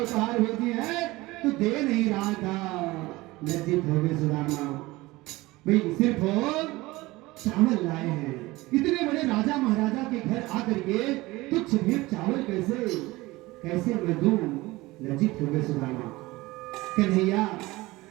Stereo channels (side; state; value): left; quieter; 20.3 dB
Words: भेजी है, तो दे नहीं रहा था। लज्जित हो गए सुदामा। भाई सिर्फ चावल लाए हैं, इतने बड़े राजा महाराजा के घर आकर के तुच्छ भेंट चावल कैसे मैं दूं? लज्जित हो गए सुदामा। कन्हैया